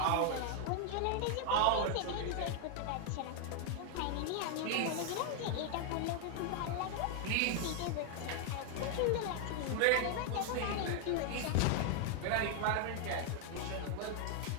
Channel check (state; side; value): different; both; correlation 0.00